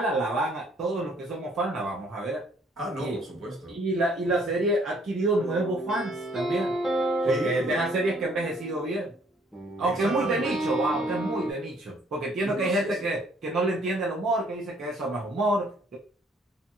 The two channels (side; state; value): both; normal; correlation 0.63